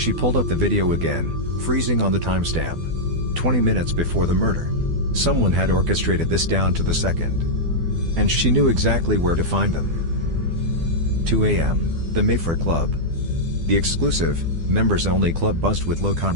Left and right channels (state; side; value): late; left; 12 ms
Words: pulled up the video again, freezing on the timestamp. 20 minutes before the murder. Someone had orchestrated this down to the second. And she knew exactly where to find them. 2 a.m., the Mayfair Club. The exclusive, members-only club buzzed with low